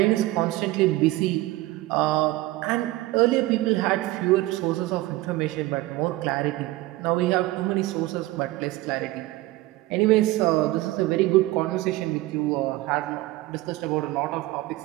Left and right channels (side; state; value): left; quieter; 18.3 dB